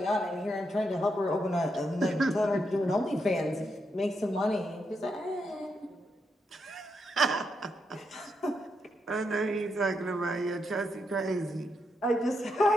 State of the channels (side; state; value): both; normal; correlation 0.82